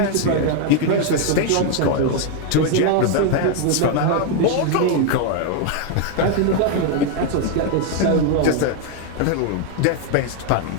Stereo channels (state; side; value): different; both; correlation 0.01